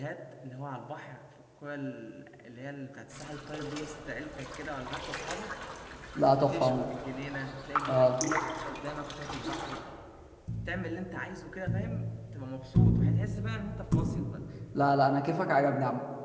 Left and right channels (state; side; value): identical; both; correlation 1.00